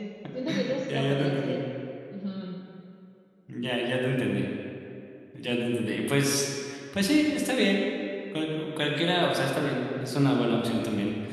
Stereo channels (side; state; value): both; identical; correlation 1.00